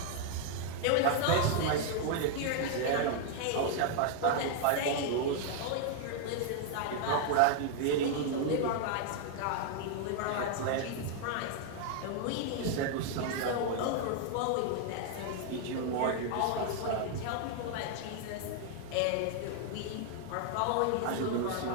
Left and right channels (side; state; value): both; different; correlation 0.00